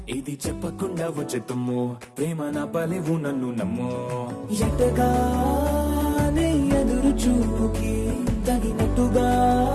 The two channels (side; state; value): both; identical; correlation 1.00